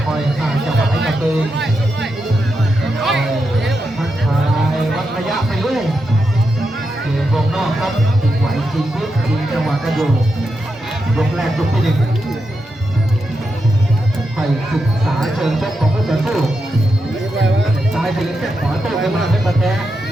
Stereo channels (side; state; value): both; normal; correlation 0.86